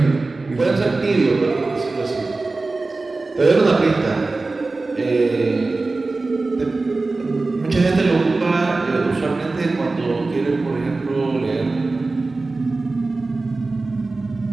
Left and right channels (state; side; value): quieter; left; 3.5 dB